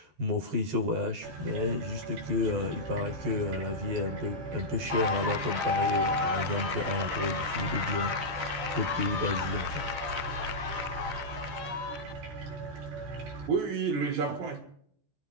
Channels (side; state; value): left; late; 14 ms